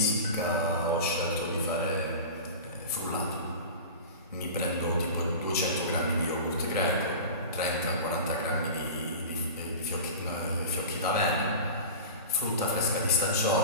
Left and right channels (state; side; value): inverted; both; correlation -0.33